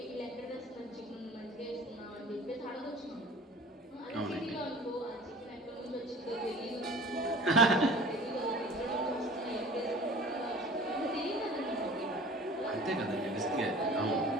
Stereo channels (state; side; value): normal; both; correlation 0.44